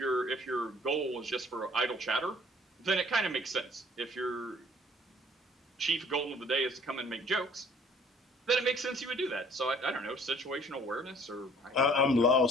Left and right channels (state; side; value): normal; both; correlation 0.56